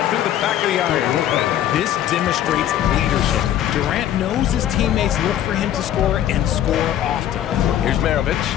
through the back of the iron. This demonstrates leadership. Durant knows his teammates look for him to score and score often. Here's Maravich.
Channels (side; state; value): right; quieter; 11.4 dB